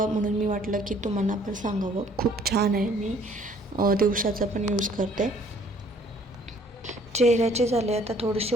म्हणून मी वाटलं की तुम्हाला पण सांगावं. खूप छान आहे. मी दिवसाचा पण यूज करते. चेहऱ्याचे झाले, आता थोडीशी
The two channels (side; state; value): both; normal; correlation 0.59